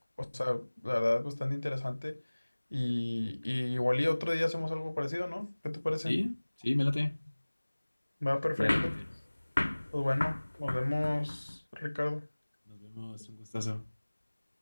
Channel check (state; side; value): inverted; both; correlation -1.00